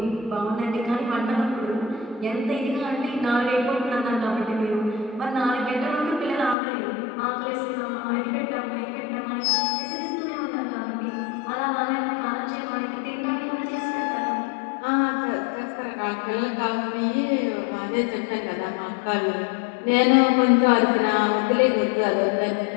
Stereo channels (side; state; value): right; drops out; at 6.6 s